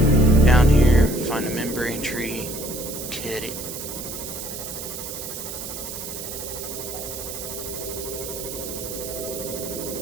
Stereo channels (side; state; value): right; noise; hiss, 8 dB below the sound